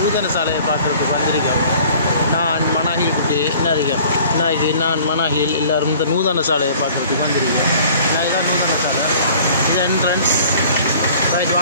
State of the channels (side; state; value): both; inverted; correlation -0.51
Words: சாலையை பார்க்குறதுக்கு வந்திருக்கோம். நான் மனாஹில் குட்டி நாளைக்கு நான் மனாஹில் எல்லோரும் இந்த நூதன சாலையை பார்க்குறதுக்கு வந்திருக்கேன். நான் இதான் நூதன சாலை, இது என்ட்ரன்ஸ். ரைட்,